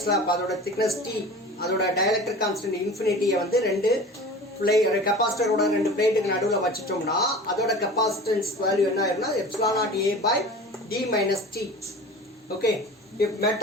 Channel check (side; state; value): both; normal; correlation 0.38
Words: slab அதோட thickness T அதோட dielectric constant infinity வந்து ரெண்டு கெபாசிட்டரோட ரெண்டு பிளேட்டுக்கு நடுவில் வச்சிட்டோம்னா அதோட capacitance value என்ன ஆயிரும்னா epsilon naught A by D minus T. Okay, if